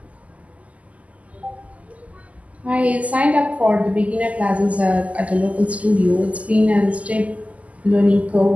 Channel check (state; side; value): late; left; 0.071 ms